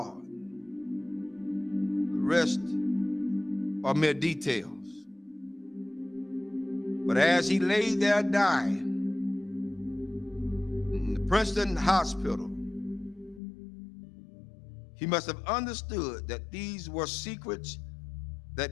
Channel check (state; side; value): drops out; right; at 13.4 s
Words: The rest are mere details. But as he lay there dying in the Princeton hospital, he must have understood that these were secrets